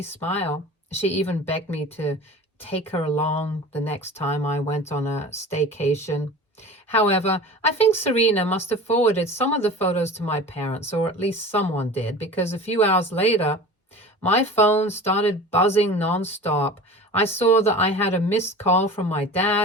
smile. She even begged me to take her along the next time I went on a staycation. However, I think Serena must have forwarded some of the photos to my parents, or at least someone did, because a few hours later, my phone started buzzing nonstop. I saw that I had a missed call from my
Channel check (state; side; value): normal; both; correlation 0.37